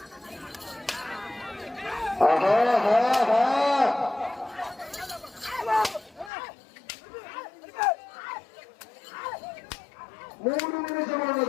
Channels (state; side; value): drops out; right; at 6.3 s